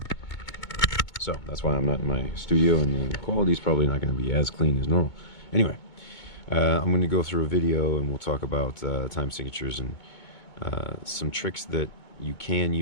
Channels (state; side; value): late; right; 2.2 ms